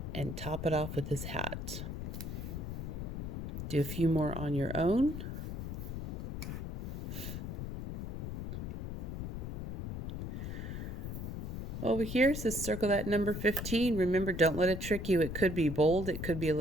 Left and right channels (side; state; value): left; noise; rumble, 5 dB below the sound